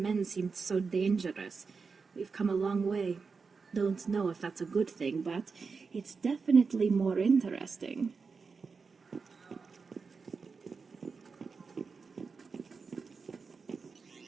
seemed so dangerous. We've come a long way. Don't know if that's a good thing, but it's definitely more interesting.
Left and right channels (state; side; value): quieter; left; 4.9 dB